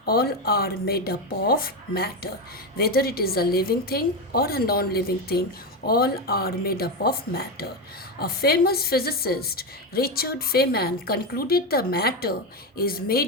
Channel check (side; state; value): both; normal; correlation 0.13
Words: all are made up of matter. Whether it is a living thing or a non living thing, all are made up of matter. A famous physicist, Richard Feynman, concluded the matter is